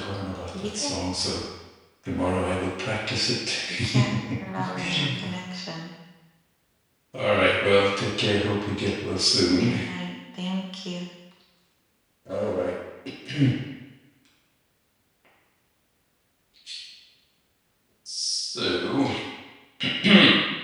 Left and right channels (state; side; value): identical; both; correlation 1.00